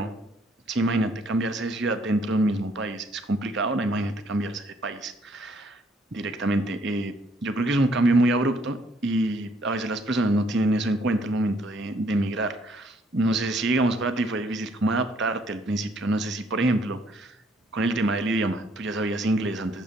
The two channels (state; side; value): normal; both; correlation 0.66